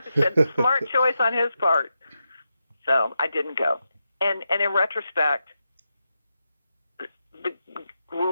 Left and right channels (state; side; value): inverted; both; correlation -0.87